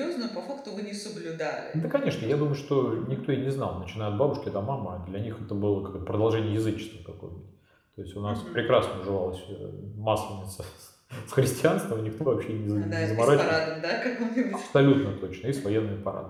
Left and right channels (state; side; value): identical; both; correlation 1.00